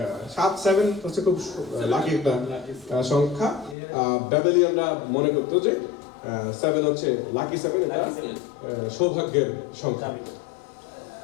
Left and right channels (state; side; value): drops out; right; at 3.8 s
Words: 7 হচ্ছে খুব লাকি একটা সংখ্যা। ব্যাবেলিয়ানরা মনে করতো যে 7 হচ্ছে লাকি 7, এটা সৌভাগ্যের সংখ্যা।